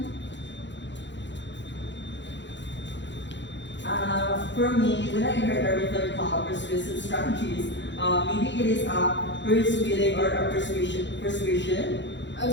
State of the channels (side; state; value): right; late; 0.53 ms